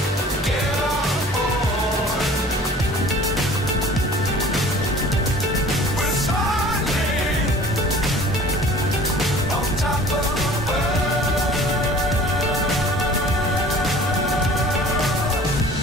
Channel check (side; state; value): both; normal; correlation 0.47